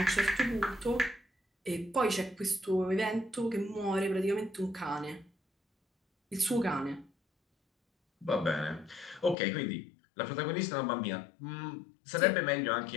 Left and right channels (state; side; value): drops out; right; at 9.3 s